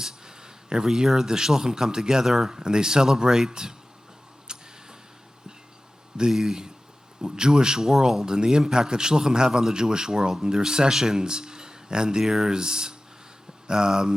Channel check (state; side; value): normal; both; correlation 0.96